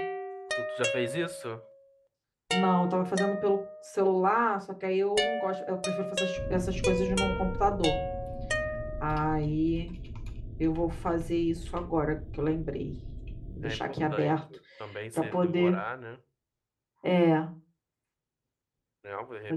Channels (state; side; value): identical; both; correlation 1.00